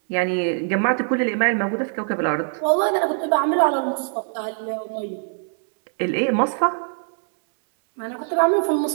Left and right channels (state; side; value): silent; left; digital silence